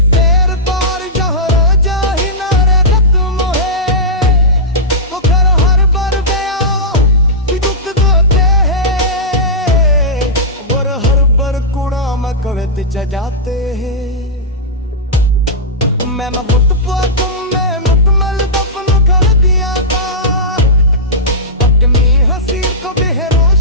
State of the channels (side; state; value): both; normal; correlation -0.13